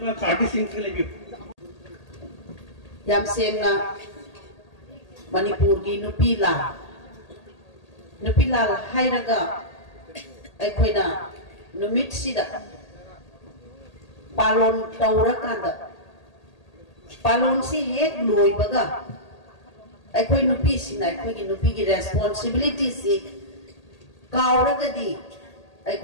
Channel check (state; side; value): late; right; 1.8 ms